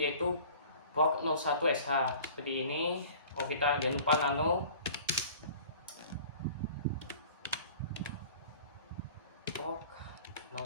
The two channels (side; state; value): both; inverted; correlation -0.46